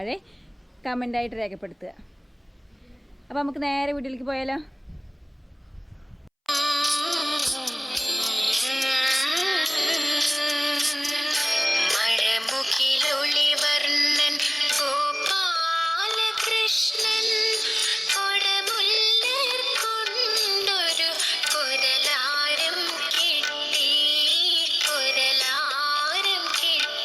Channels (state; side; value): identical; both; correlation 1.00